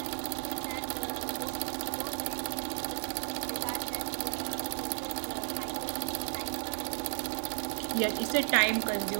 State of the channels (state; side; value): silent; left; digital silence